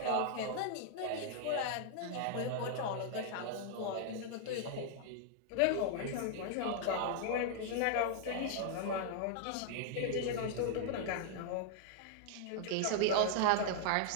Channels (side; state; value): both; different; correlation -0.01